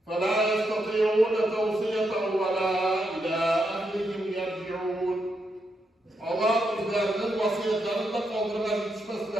فَلَا يَسْتَطِيعُونَ تَوْصِيَةً وَلَا إِلَى أَهْلِهِمْ يَرْجِعُونَ. Allah o'zlarining vasiyatlarini qoldirib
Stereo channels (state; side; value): normal; both; correlation 0.82